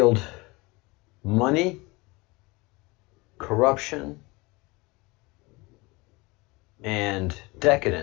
money, corruption, and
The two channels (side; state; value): right; quieter; 24.4 dB